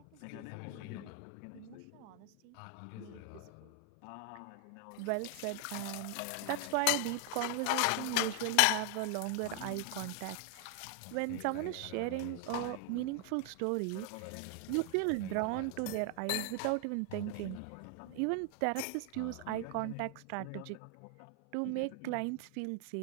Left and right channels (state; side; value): different; both; correlation 0.00